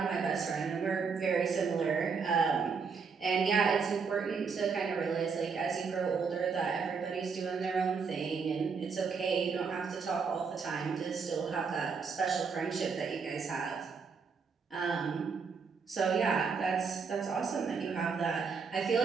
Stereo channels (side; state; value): left; quieter; 5.4 dB